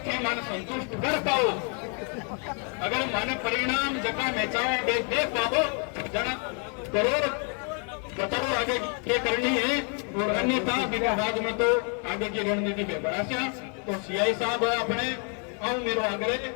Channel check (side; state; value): right; quieter; 39.5 dB